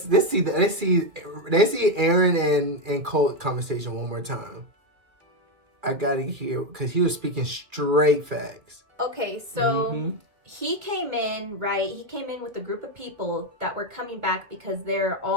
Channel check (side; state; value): left; late; 2.5 ms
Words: see Aaron and Colt conversation one more time. I gotta hear because he was speaking straight facts. Okay, so Mhm. he came in, right? He came in with a group of people that were coming back because they're